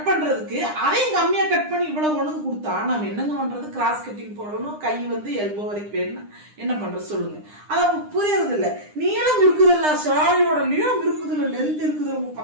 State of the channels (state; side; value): late; left; 9.8 ms